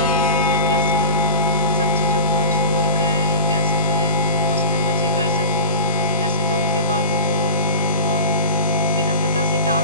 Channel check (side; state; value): both; inverted; correlation -0.33